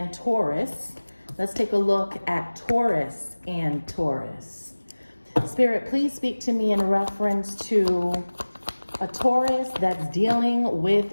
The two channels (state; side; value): inverted; both; correlation -1.00